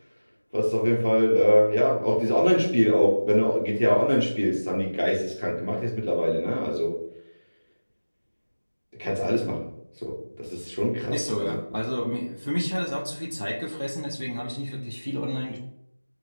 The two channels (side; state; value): both; inverted; correlation -1.00